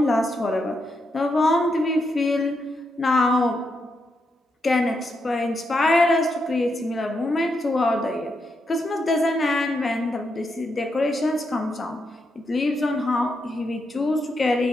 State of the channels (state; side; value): normal; both; correlation 0.83